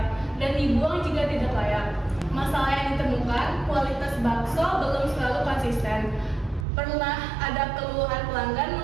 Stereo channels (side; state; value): left; drops out; at 6.7 s